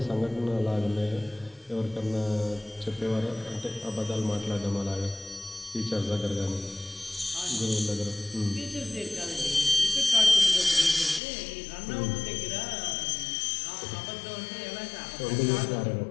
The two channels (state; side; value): drops out; right; at 11.2 s